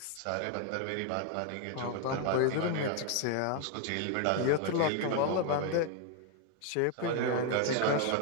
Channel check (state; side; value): different; both; correlation 0.00